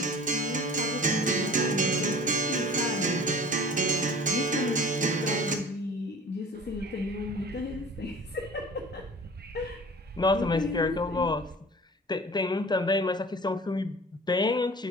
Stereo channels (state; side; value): normal; both; correlation 0.43